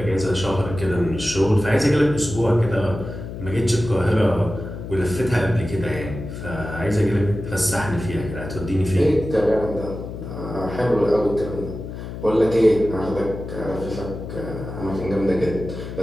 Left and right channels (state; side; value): noise; left; hum, 9 dB below the sound